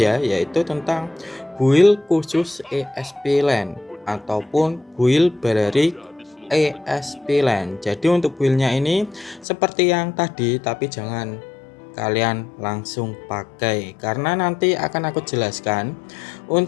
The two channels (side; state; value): right; drops out; at 9.5 s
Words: yaitu tentang build khusus ESP LAN ataupun build Balerik ESP LAN. Jadi untuk buildnya ini seperti yang tadi, tapi jangan kalian langsung pakai karena nanti akan aku jelaskan